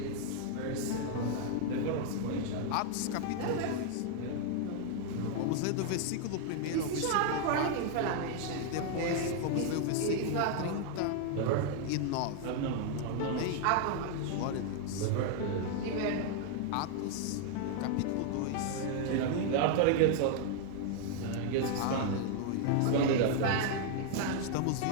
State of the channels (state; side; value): different; both; correlation 0.00